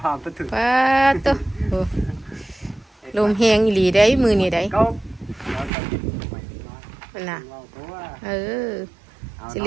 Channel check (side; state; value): left; drops out; at 5.7 s